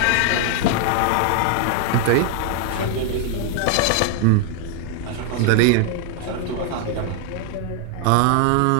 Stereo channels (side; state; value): both; different; correlation 0.00